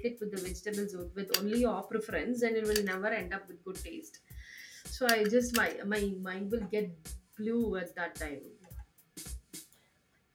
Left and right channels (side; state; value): both; identical; correlation 1.00